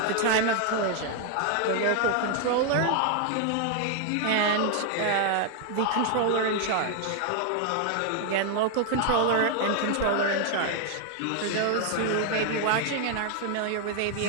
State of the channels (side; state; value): both; different; correlation 0.00